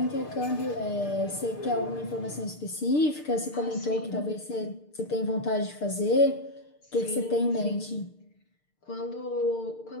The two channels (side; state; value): right; late; 6.7 ms